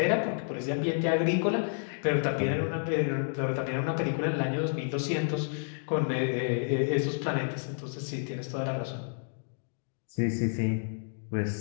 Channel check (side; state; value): right; silent; digital silence